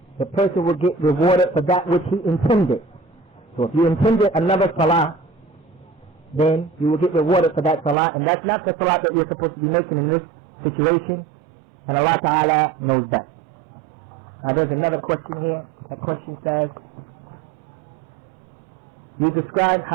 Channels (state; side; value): drops out; left; at 8.0 s